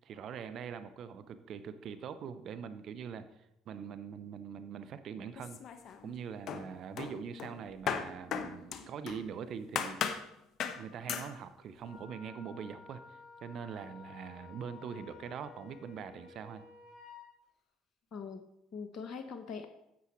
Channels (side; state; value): both; normal; correlation 0.55